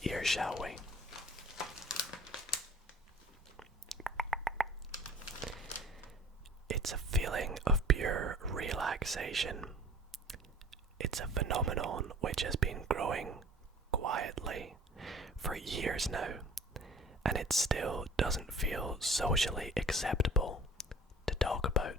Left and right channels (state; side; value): normal; both; correlation 0.48